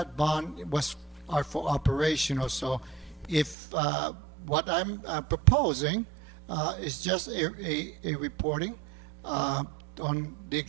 bond are for operational. So if what I'm proposing is just a reporting on the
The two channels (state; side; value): drops out; left; at 3.6 s